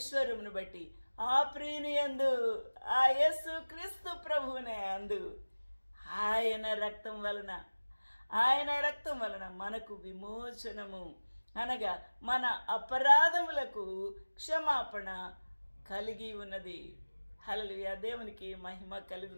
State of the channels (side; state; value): both; inverted; correlation -1.00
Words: బట్టి ఆ ప్రియుని యందు, ఆ యేసు క్రీస్తు ప్రభువునే అందు ఆయన రక్తం వలన మనకు విమోచనము, అనగా మన అపరాధములకు క్షమాపణ కలిగి ఉన్నది. హల్లెలూయా, దేవునికి మహిమ